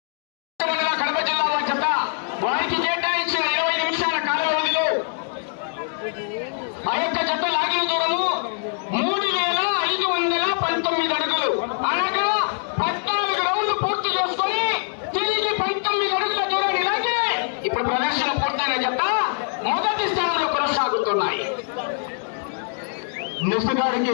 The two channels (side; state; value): right; silent; 63 dB below the other